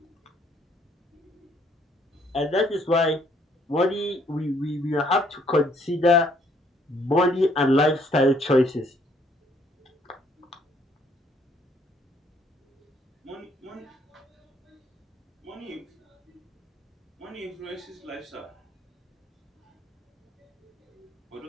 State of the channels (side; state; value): both; normal; correlation 0.66